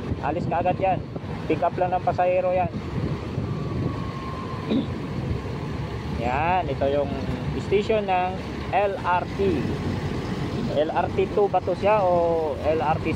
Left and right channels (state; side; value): identical; both; correlation 1.00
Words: Alis ka agad yan. Pick up lang ng pasahero yan. Yan, ito yung station ng LRT. LRT 2 ba to siya o LRT